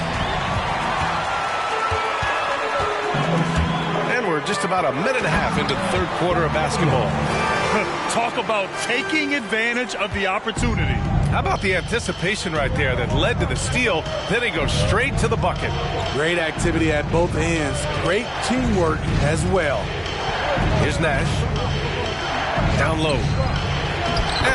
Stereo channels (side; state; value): both; identical; correlation 1.00